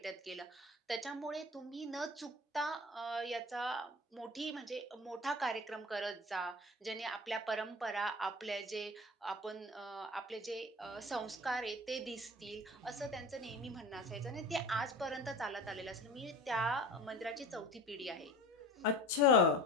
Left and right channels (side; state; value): both; normal; correlation 0.37